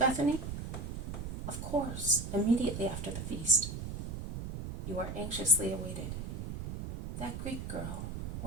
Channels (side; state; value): right; noise; rumble, 6 dB below the sound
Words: Of course, immediately after the feast. You are anxiously awaited. That Greek girl,